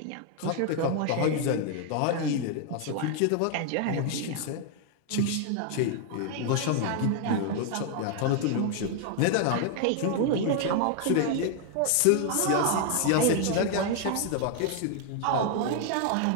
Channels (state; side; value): different; both; correlation 0.00